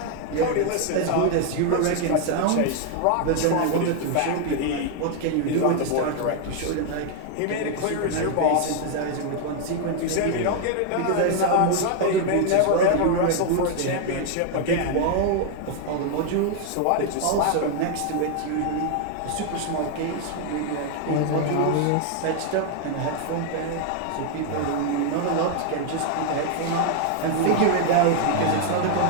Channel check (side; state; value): both; different; correlation 0.00